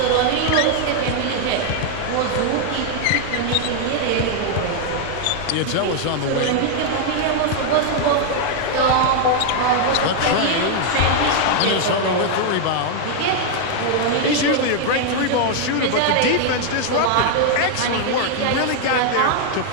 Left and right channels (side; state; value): both; different; correlation 0.00